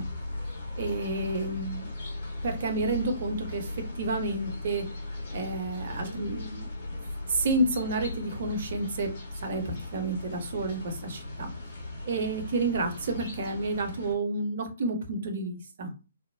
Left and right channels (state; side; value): inverted; both; correlation -0.53